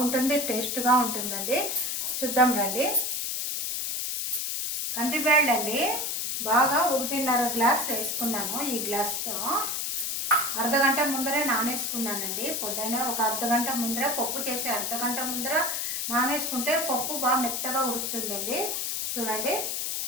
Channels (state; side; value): noise; left; hiss, 1 dB below the sound